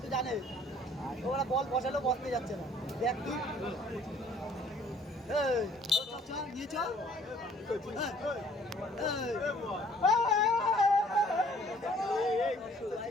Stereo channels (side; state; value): both; normal; correlation 0.57